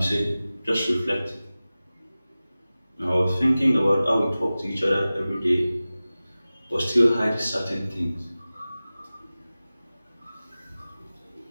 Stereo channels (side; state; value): both; inverted; correlation -0.97